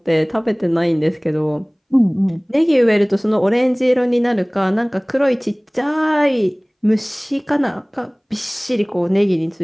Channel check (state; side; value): identical; both; correlation 1.00